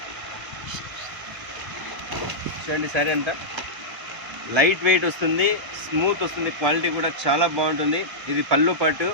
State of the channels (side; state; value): left; late; 1.0 ms